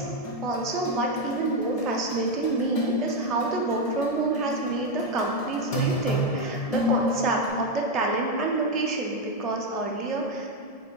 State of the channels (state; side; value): late; right; 1.7 ms